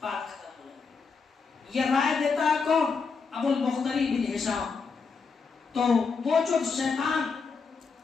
بات ختم ہو جائے. یہ رائے دیتا ہے کون؟ ابو البختری بن ہشام. تو وہ جو شیطان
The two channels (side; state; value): right; quieter; 5.1 dB